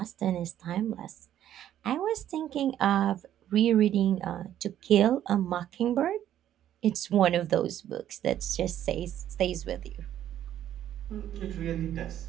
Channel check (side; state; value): left; quieter; 11.3 dB